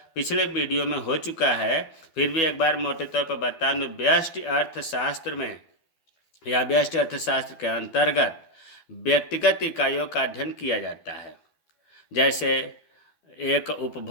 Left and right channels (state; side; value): late; right; 12 ms